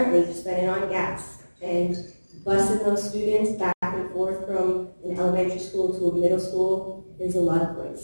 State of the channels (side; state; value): both; inverted; correlation -1.00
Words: spending on gas and busing those students back and forth from an elementary school to a middle school is a lot of